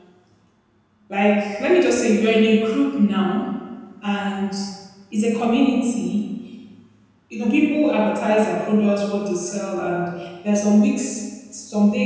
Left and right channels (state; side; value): identical; both; correlation 1.00